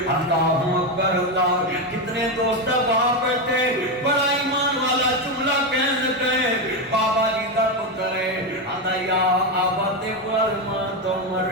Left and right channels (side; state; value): both; normal; correlation 0.10